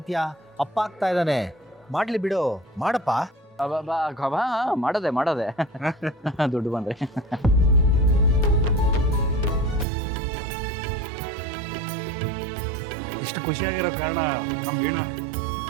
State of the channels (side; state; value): left; drops out; at 9.9 s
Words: ಅಪ್ಪ ಆಗ್ತಾ ಇದ್ದಾನೆ, ಮಾಡ್ಲಿ ಬಿಡು, ಮಾಡಪ್ಪ. ಮಾಡೋದೆ ದುಡ್ಡು ಬಂದ್ರೆ. ಇಷ್ಟು ಖುಷಿಯಾಗಿರೋ ಕಾರಣ ನಮ್ಮ ವೀಣಾ.